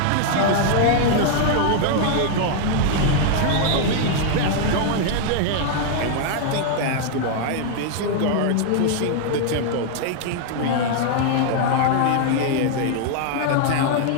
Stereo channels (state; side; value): different; both; correlation 0.00